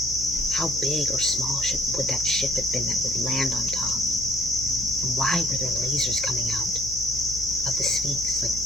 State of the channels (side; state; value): left; noise; hum, 13 dB below the sound